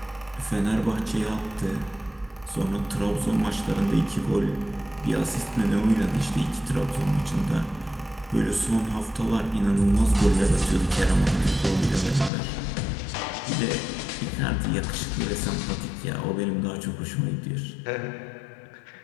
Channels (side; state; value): right; drops out; at 12.3 s